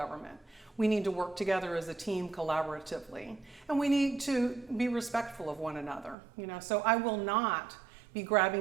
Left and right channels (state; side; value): drops out; left; at 6.2 s